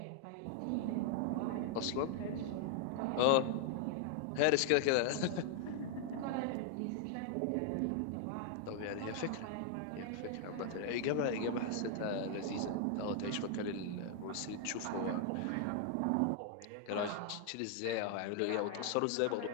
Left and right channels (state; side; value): different; both; correlation 0.00